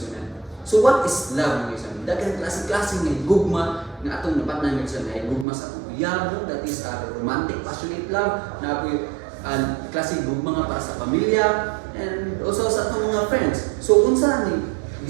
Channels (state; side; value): drops out; left; at 5.5 s